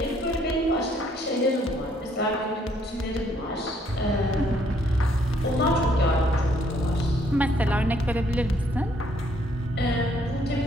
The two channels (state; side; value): normal; both; correlation 0.67